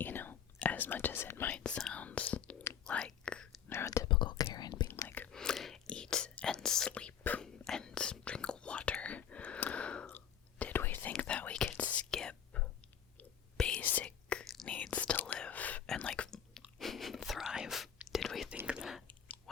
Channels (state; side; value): quieter; right; 8.5 dB